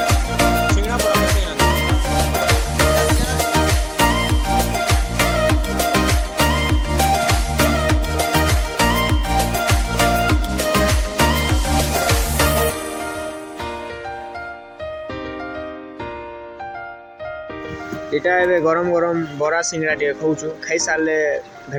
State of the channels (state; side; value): identical; both; correlation 1.00